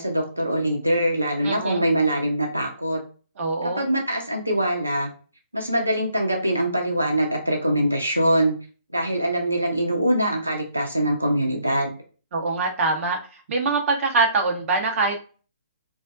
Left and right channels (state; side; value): inverted; both; correlation -0.71